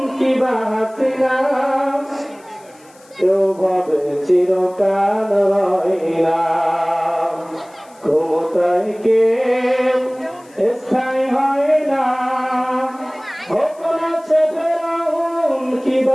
কিংবা হাসিনা, কেউ ভাবে চিরকাল হয় না। ক্ষমতায় কেউ স্থায়ী হয় না, কখনো সে ফেরাউন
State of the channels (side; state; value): left; noise; hiss, 28 dB below the sound